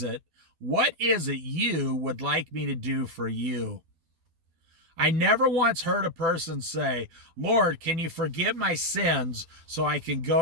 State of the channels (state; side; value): late; left; 12 ms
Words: it you would like me to do for you? I never once heard a person say, Lord, can you forgive my sins so I can